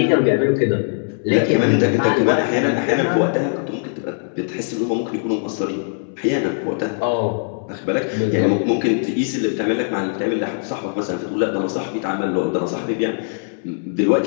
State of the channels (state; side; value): silent; right; 65 dB below the other